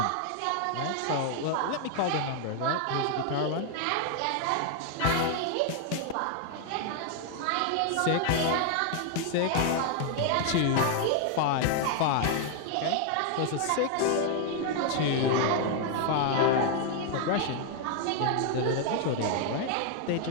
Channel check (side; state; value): both; different; correlation 0.00